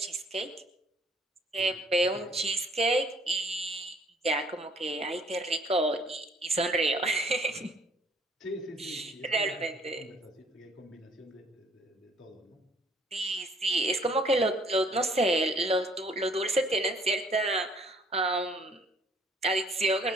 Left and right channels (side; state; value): both; normal; correlation 0.59